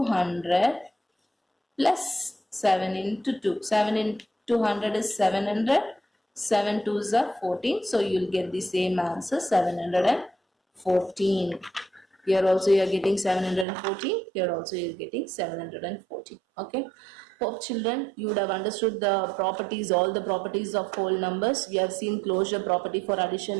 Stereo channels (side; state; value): left; drops out; at 13.7 s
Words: 100 plus 7 into 2. 7 into 100 is 700. 7 2s are 14. So you will get the same answer, 714. Here also you are getting 714. Here also you are getting 714. Okay. Hope children you would have understood the properties, all the properties of whole numbers. We have seen closure property for